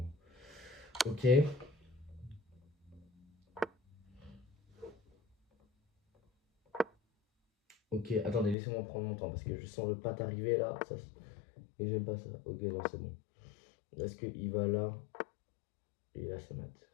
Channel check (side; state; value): right; drops out; at 8.6 s